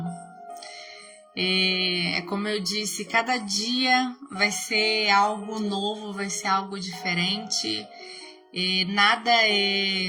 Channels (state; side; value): identical; both; correlation 1.00